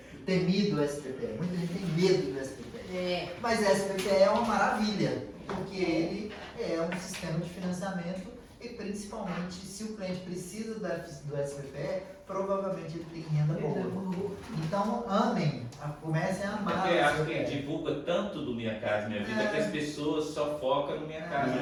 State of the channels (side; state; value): both; identical; correlation 1.00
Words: o temido SBPE. Muita gente tem medo do SBPE. Mas o SBPE é uma maravilha, porque ele é um sistema de financiamento e principalmente se o cliente precisa do SBPE, provavelmente ele tem renda boa. Então amem, comecem a amar. Porque acho que divulga tanto do Minha Casa Minha Vida que as pessoas só focam no Minha Casa